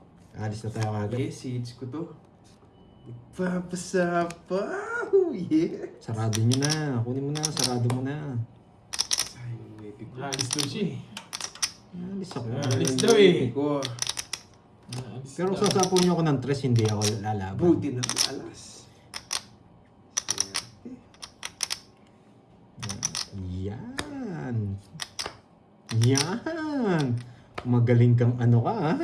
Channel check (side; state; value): both; identical; correlation 1.00